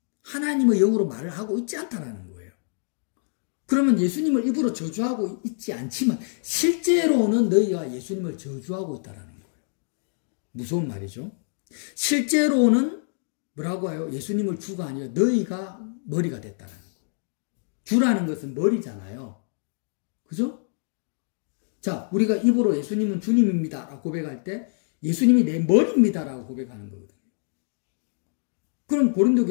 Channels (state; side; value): silent; right; digital silence